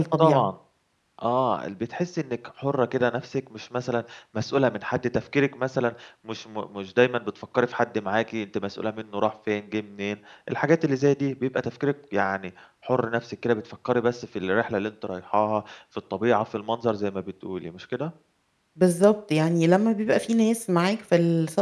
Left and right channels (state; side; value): identical; both; correlation 1.00